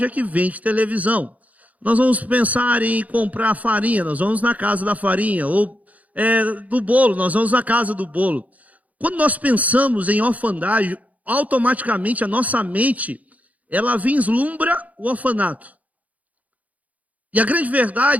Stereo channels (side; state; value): left; late; 0.072 ms